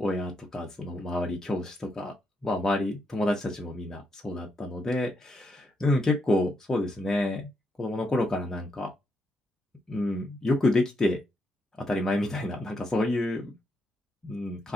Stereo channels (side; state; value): both; normal; correlation 0.79